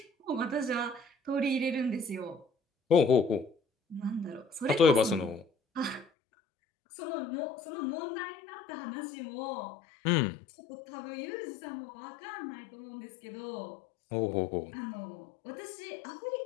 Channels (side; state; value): right; drops out; at 6.1 s